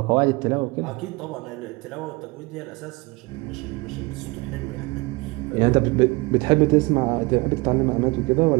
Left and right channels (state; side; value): quieter; left; 24.9 dB